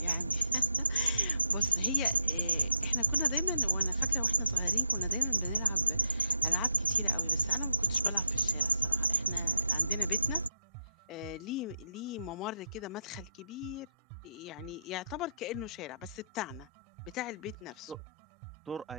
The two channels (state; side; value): inverted; both; correlation -0.83